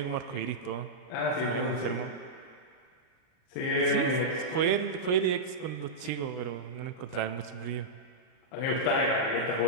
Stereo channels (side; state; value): right; late; 38 ms